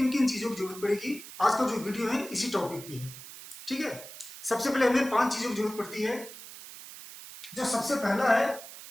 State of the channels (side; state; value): right; noise; hiss, 14 dB below the sound